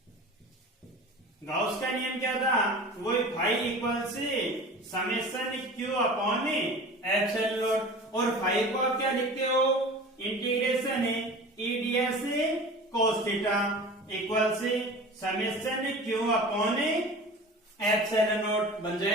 गाउस का नियम क्या था, वही फाई इक्वल से summation Q upon epsilon not, और फाई को आप क्या लिखते हो, इंटीग्रेशन है ईडीएस कोस थीटा इक्वल से summation Q upon epsilon not बन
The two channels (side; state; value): both; normal; correlation 0.38